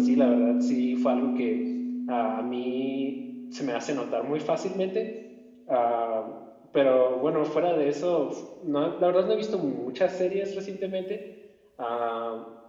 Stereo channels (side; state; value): both; identical; correlation 1.00